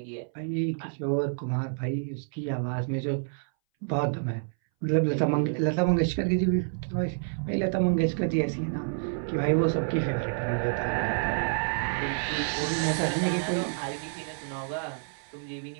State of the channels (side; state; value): left; silent; 59 dB below the other